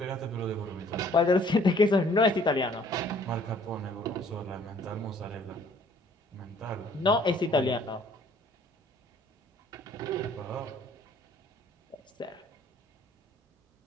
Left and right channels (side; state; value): both; normal; correlation 0.58